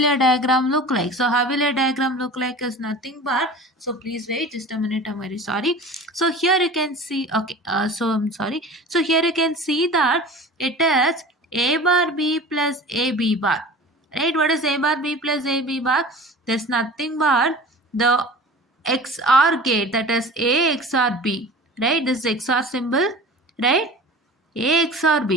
diagram look like? So how will your diagram look like is nothing but, so please wait just a minute, I'm very sorry. So here you can see, okay, so I'm sorry. So here you can see that it is A bar B plus AB bar, right? What is A bar B plus AB bar? There's nothing but the XOR gate, that is A XOR B, right? This is XOR symbol, right? A XOR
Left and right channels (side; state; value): both; normal; correlation 0.39